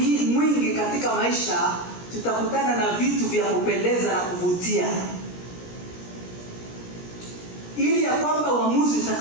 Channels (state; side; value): late; right; 17 ms